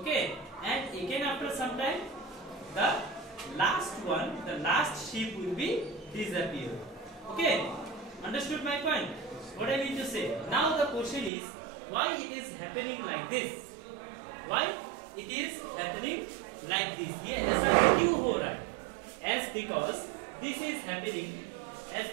and again after some time, the last one, the last ship will be disappeared. Okay, understood my point? What I mean to say? Now the question is, why it is happening like this? Why it is happening like this? ये ऐसा क्यों हो रहा है? As because this is happening, as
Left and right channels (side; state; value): left; drops out; at 11.3 s